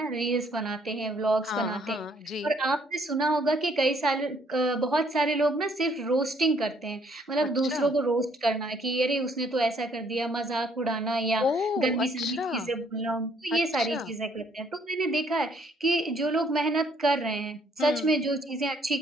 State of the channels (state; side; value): normal; both; correlation 0.65